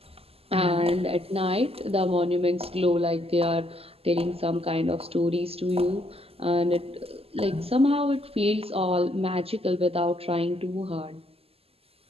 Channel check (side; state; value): left; late; 0.29 ms